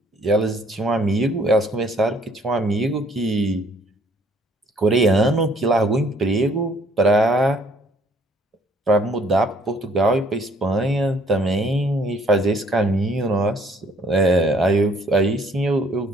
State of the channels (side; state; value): both; normal; correlation 0.62